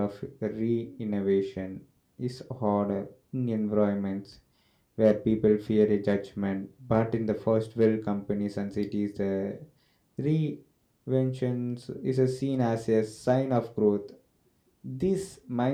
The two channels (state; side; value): identical; both; correlation 1.00